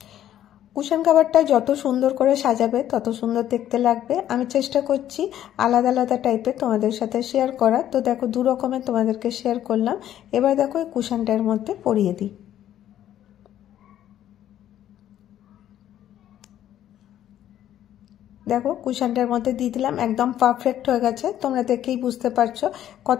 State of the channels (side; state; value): right; quieter; 11.5 dB